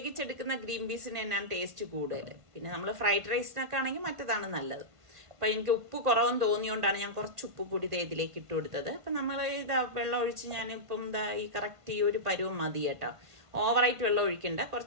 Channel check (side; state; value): left; late; 1.5 ms